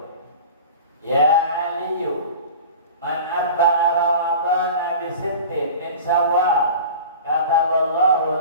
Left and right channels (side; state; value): both; inverted; correlation -0.37